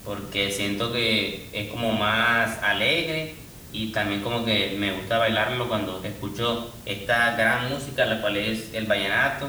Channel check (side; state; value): both; identical; correlation 1.00